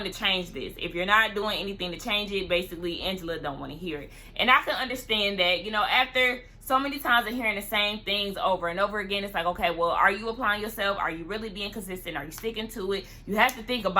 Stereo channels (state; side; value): identical; both; correlation 1.00